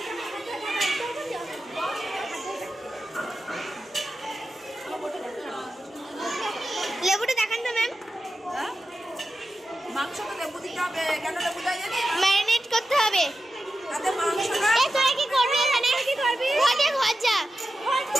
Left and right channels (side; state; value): both; normal; correlation 0.91